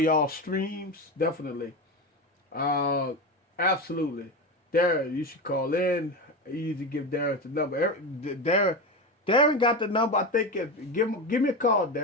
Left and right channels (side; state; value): both; normal; correlation 0.20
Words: y'all streams. Definitely. Absolutely. Darren, you should call in. Easy, give Darren the number. Darren got the number. I think give me a call,